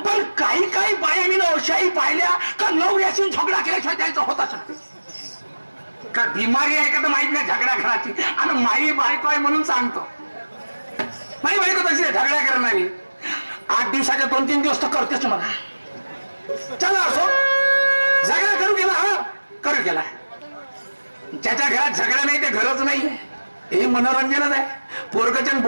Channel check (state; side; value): inverted; both; correlation -1.00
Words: पण काही काही बायांनी अशाही पाहिल्या का नवऱ्याशी झगडा केल्याशिवाय त्याचं होताच का बिमारी आहे का तर माहित नाही झगडा घराची. आणि माई बायको आहे म्हणून सांगतो, माई बायको तशी झगडा करणारी 8 दिवसाच्या 2-3 दिवस तर करतेच मला. चला असो, झगडा करू गेला, हा करू गेला. ज्याच्या घरात झगडा नाही ते घरच नाहीये. हे मनोरंजनच आहे. पोरगचन